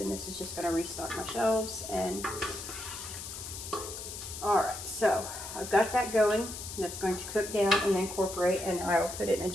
this is just going to restock my shelves. And alright, so I've got that going. That's going to cook down and incorporate, and I will put it in a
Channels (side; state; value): left; noise; hiss, 9 dB below the sound